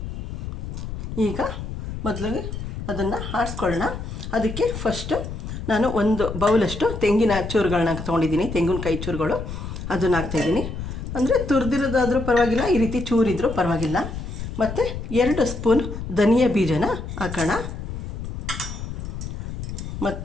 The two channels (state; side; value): noise; left; rumble, 7 dB below the sound